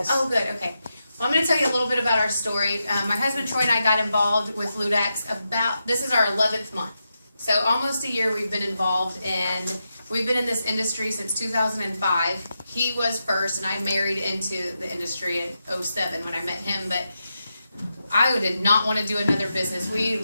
Oh, good. Okay. Well, I'm going to tell you a little bit about our story. My husband Troy and I got involved with Ludaxx this is our 11th month. So almost a year we've been involved, and we've been in this industry since 2005. He was first, and I married into the industry in 2007 when I met him, but I did not want to do another business. We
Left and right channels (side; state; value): both; inverted; correlation -0.87